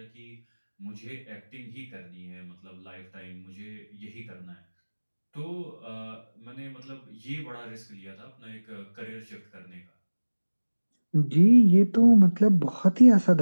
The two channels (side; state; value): both; inverted; correlation -1.00